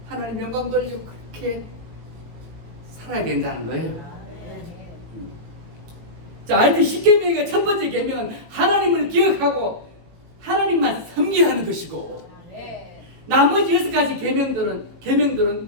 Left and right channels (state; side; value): late; left; 18 ms